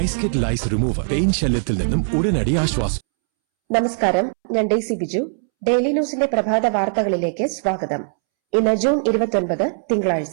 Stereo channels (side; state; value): left; silent; 66 dB below the other